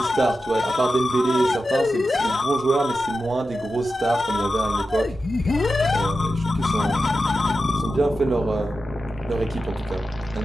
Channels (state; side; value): normal; both; correlation 0.91